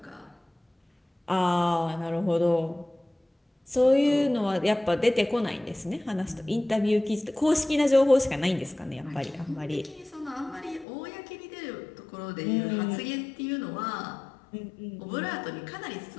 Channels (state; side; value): drops out; right; at 10.9 s